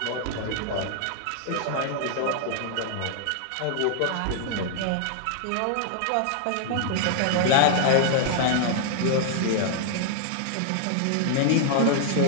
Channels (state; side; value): different; both; correlation -0.01